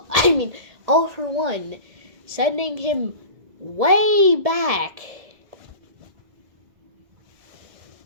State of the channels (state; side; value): late; left; 1.7 ms